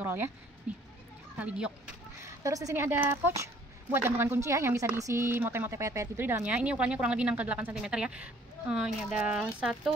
roll ya. Nih, tali giok. Terus di sini ada pouch buat gantungan kunci ya, yang bisa diisi mote-mote pet-pet gitu di dalamnya. Ini ukurannya kurang lebih 6 ke 8 cm ya. Ini ada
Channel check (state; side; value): normal; both; correlation 0.58